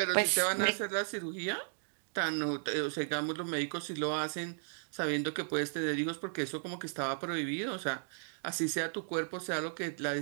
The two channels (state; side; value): silent; left; digital silence